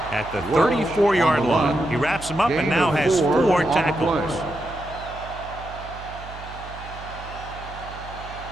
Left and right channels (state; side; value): noise; right; hum, 14 dB below the sound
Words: at the 34-yard line. He wraps him up and now has 4 tackles.